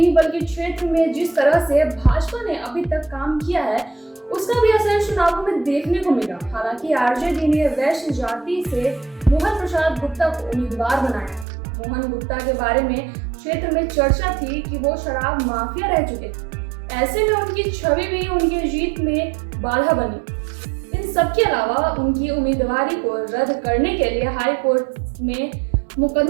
बल्कि क्षेत्र में जिस तरह से भाजपा ने अभी तक काम किया है उसका भी असर चुनावों में देखने को मिला। हालांकि आरजेडी ने वैश्य जाति से मोहन प्रसाद गुप्ता को उम्मीदवार बनाया। मोहन गुप्ता के बारे में क्षेत्र में चर्चा थी कि वो शराब माफिया रह चुके थे। ऐसे में उनकी छवि भी उनकी जीत में बाधा बनी। इन सब के अलावा उनकी उम्मीदवारी को रद्द करने के लिए हाई कोर्ट में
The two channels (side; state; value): left; drops out; at 11.5 s